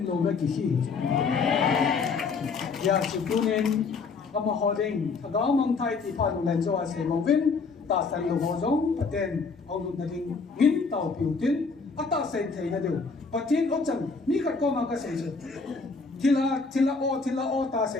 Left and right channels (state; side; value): quieter; right; 4.6 dB